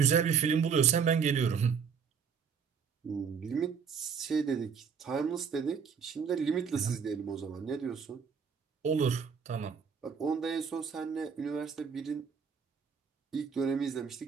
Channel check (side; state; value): left; quieter; 6.5 dB